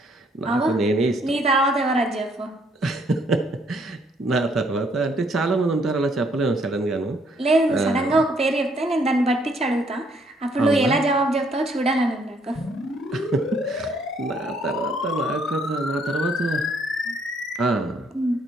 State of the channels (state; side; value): normal; both; correlation 0.67